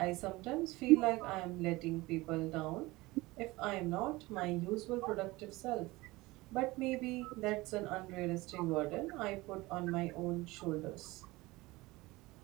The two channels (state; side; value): quieter; left; 20.9 dB